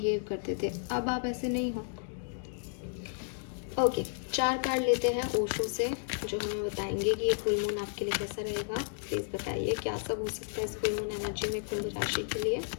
करते थे। अब आप ऐसे नहीं हो। ओके, 4 कार्ड लेते हैं ओशो से, जो हमें बताएंगे कि ये फुल मून आपके लिए कैसा रहेगा। प्लीज़ बताइए क्या सब हो सकता है इस फुल मून एनर्जी में कुंभ राशि के लिए।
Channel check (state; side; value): silent; right; digital silence